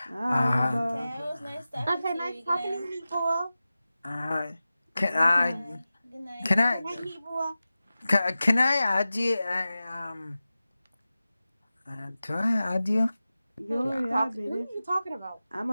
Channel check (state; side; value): inverted; both; correlation -0.95